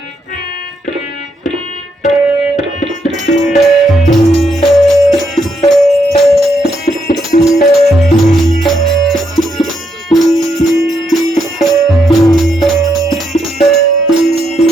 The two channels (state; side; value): normal; both; correlation 0.78